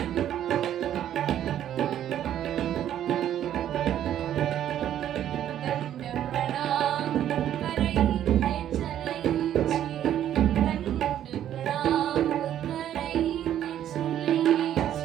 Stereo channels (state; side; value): quieter; left; 11.0 dB